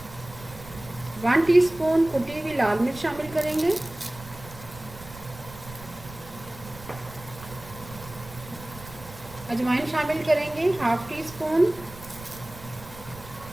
1 टीस्पून कुटी हुई लाल मिर्च शामिल करेंगे। अजवाइन शामिल करेंगे 1/2 टीस्पून।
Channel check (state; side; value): noise; right; rumble, 16 dB below the sound